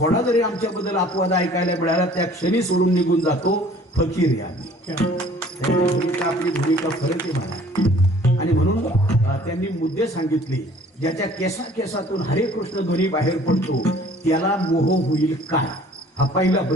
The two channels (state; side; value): normal; both; correlation 0.52